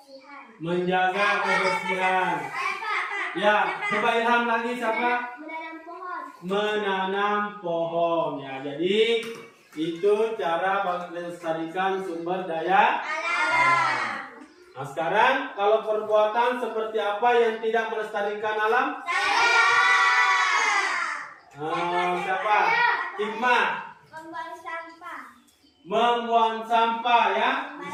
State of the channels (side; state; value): both; identical; correlation 1.00